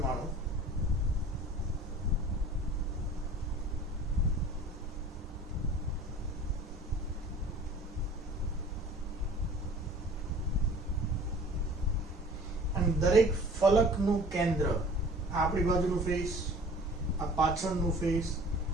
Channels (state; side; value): normal; both; correlation 0.46